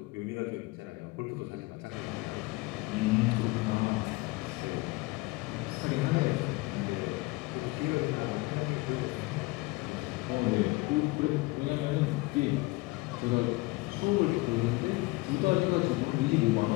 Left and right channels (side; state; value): right; quieter; 22.8 dB